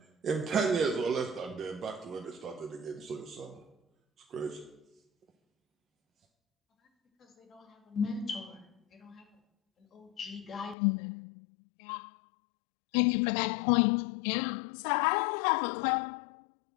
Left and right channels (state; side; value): drops out; right; at 10.8 s